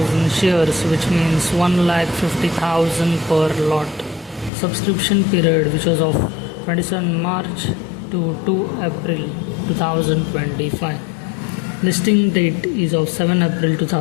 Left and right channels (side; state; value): right; drops out; at 4.5 s